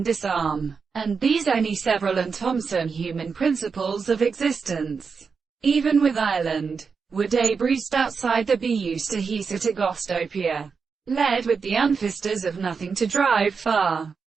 disarm, and these any several and Thomson human principles of existence, even with Ireland, were debrised outside the be used to hisa to gostopia, led with the unfisters of nothing to drive far,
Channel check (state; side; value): quieter; left; 5.4 dB